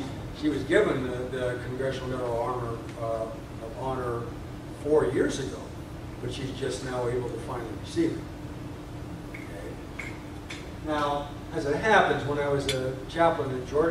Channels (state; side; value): identical; both; correlation 1.00